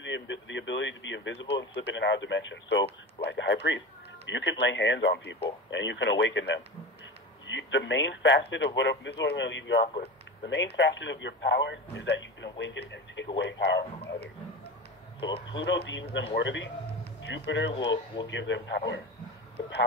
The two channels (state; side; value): normal; both; correlation 0.27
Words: the ability to be invisible and slip in and out of dimension. So, like a high priest, you can lay hands on people and you can awaken them. The main facet of this is what I'm going to leave you off with. The main facet of your power is that you can awaken and take away power from others. So if Pluto deems them worthy, Jupiter will give them power. The